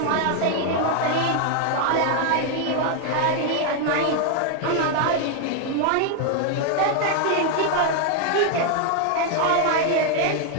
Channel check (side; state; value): both; different; correlation 0.00